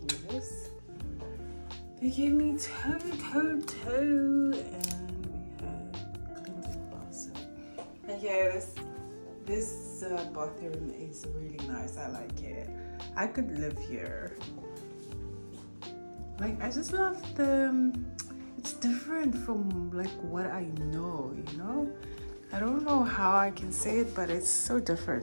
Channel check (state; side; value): inverted; both; correlation -1.00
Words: this. They gave me toe, and we have cleansing bar soap. And yeah, this bathroom is really nice. I like it. I could live here. Like, I just love it's different from like what I know, you know? I don't know how I can say it, but it's so